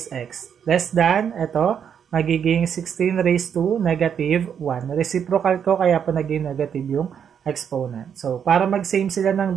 x. Less than, ito, magiging 16 raised to negative 1. Reciprocal ko, kaya po naging negative yung exponent. So, para mag-same sila ng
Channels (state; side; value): quieter; left; 7.9 dB